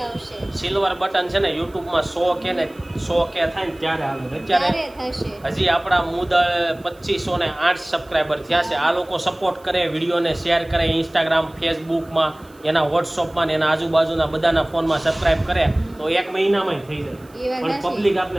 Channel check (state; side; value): noise; right; hiss, 29 dB below the sound